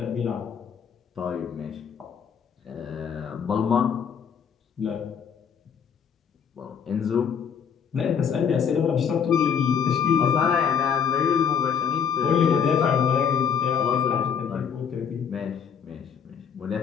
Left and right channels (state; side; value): quieter; right; 7.2 dB